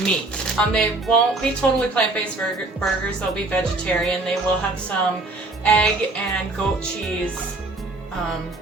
meat. They won't be totally plant-based burgers, they'll be vegetarian. They will have some egg and goat cheese on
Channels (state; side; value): quieter; left; 3.0 dB